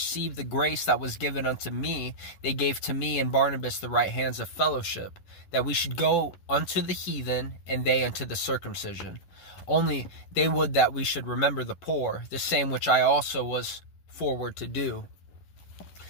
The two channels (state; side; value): late; right; 11 ms